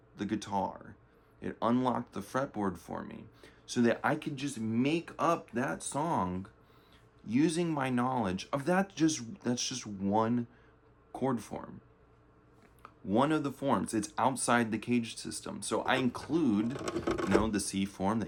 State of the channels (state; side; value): identical; both; correlation 1.00